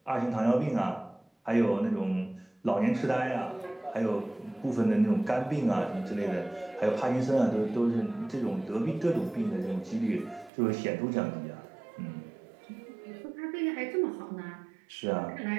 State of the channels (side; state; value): left; drops out; at 10.5 s